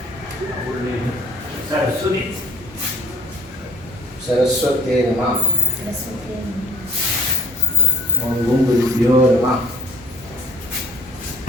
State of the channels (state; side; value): normal; both; correlation 0.59